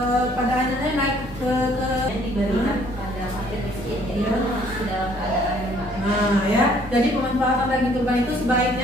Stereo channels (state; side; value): normal; both; correlation 0.61